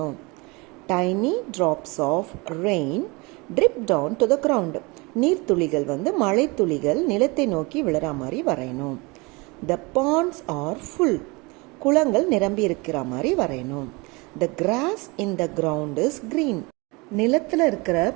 Tiny drops of rain drip down to the ground. நீர்த்துளிகள் வந்து மழை துளிகள் நிலத்தை நோக்கி விழுற மாதிரி வரையணும். The ponds are full. குளங்கள் நிரம்பி இருக்கிற மாதிரி வரையணும். The grass in the ground is green. நிலத்தில் இருக்கிற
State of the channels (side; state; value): left; quieter; 26.5 dB